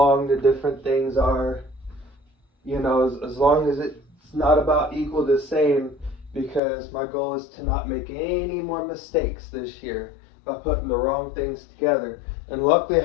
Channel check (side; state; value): right; drops out; at 6.6 s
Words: the different things are. You know, as long as it's not about equal the same, because my goal is to not make any more mistakes this year by putting the wrong things together. And luckily